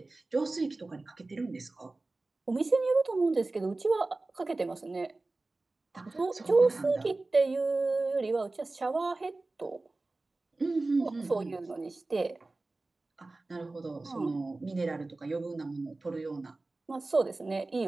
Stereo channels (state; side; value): quieter; left; 3.2 dB